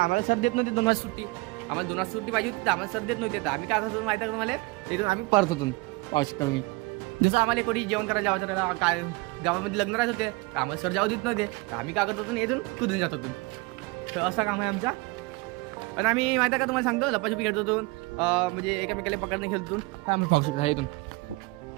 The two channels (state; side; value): quieter; left; 25.0 dB